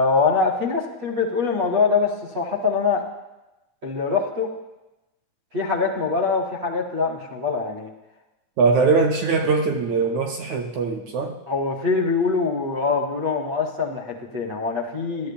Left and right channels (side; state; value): left; late; 9.4 ms